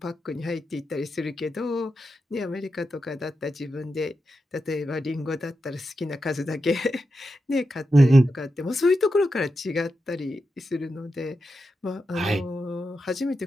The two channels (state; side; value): normal; both; correlation 0.88